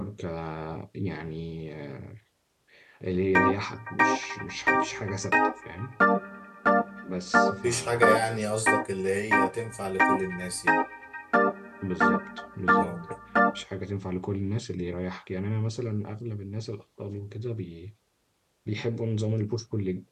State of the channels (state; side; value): identical; both; correlation 1.00